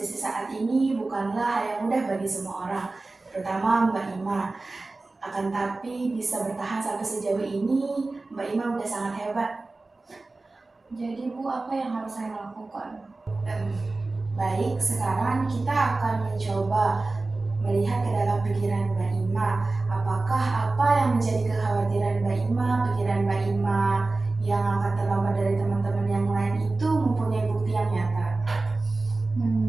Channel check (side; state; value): left; quieter; 3.3 dB